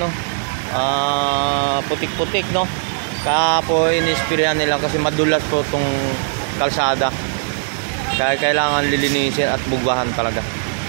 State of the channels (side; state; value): left; silent; digital silence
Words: putik-putik, no. Kaya po inispirahan nila kasi madulas po itong kalsada. Kaya kailangan lilinisin at bugwahan talaga.